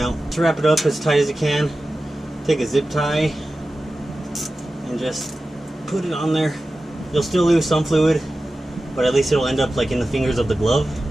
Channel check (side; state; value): both; normal; correlation 0.94